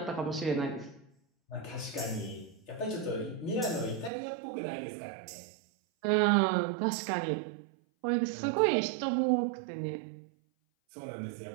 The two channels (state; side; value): drops out; left; at 4.1 s